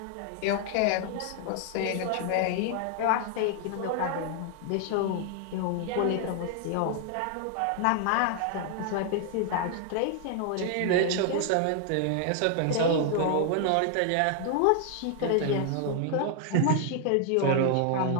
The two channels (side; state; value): both; different; correlation 0.00